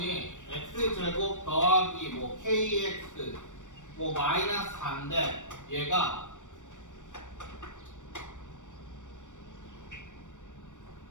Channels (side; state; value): right; late; 0.86 ms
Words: x제곱 더하기 뭐 kx 뭐 마이너스 4인데 얘가